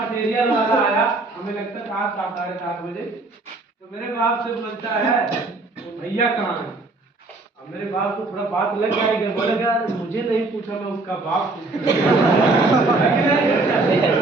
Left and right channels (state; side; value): quieter; left; 3.3 dB